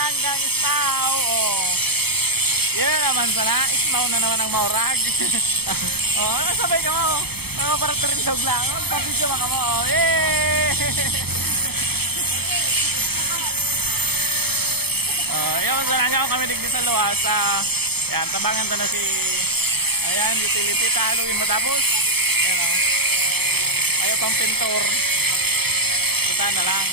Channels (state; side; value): late; left; 0.96 ms